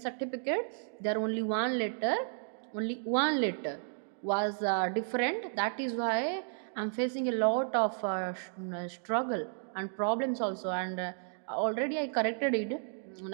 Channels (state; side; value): silent; left; digital silence